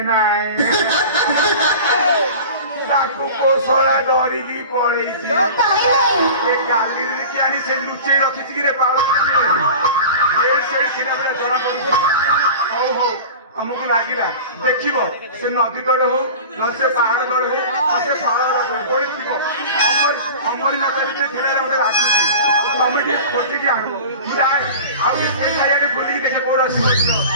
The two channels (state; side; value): inverted; both; correlation -0.36